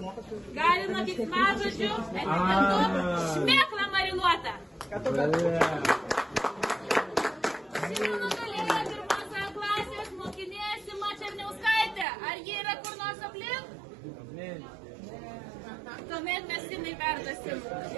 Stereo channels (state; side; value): drops out; left; at 12.1 s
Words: gali nuo keiksmažodžių etiketu šmėkla marinuota. Šiandien nugalėjo pirmos klasės mokinė Sima Černiauskaitė. Ar ji yra kur nors aplink? Tuomet mes Simai perduosim.